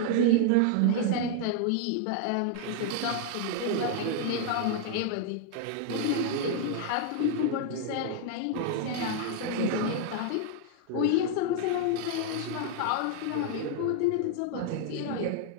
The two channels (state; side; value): different; both; correlation 0.00